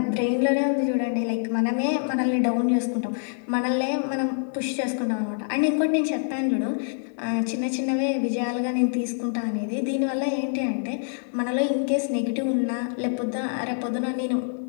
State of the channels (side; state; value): right; silent; digital silence